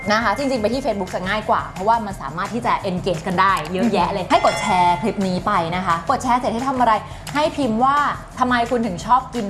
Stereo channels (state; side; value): identical; both; correlation 1.00